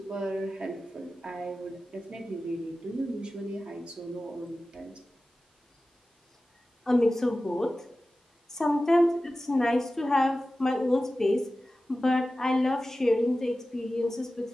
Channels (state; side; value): normal; both; correlation 0.95